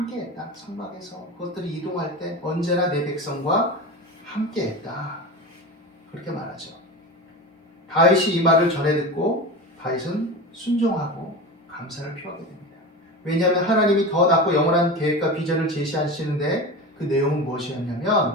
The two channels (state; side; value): normal; both; correlation 0.27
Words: 성막에서 그것들이 이동할 때 언제나 내 백성과 함께했다. 그렇게 말하죠. 다윗이 이 말을 전해 듣고 다윗은 순종하고 감사를 표하게 됩니다. 왜냐하면 하나님이 더 낫고 영원한 계획과 비전을 제시하시는데 그 내용은